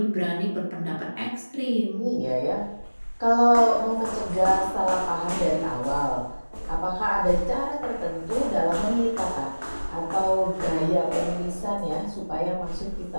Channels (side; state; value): both; inverted; correlation -1.00